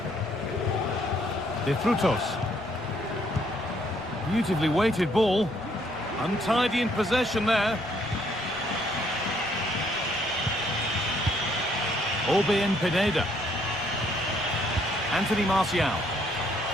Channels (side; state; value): left; noise; rumble, 23 dB below the sound